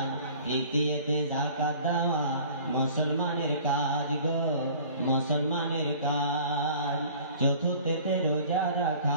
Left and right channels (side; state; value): both; inverted; correlation -0.47